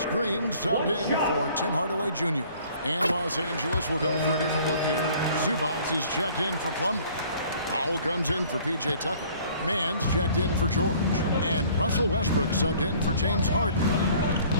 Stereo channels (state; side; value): inverted; both; correlation -0.54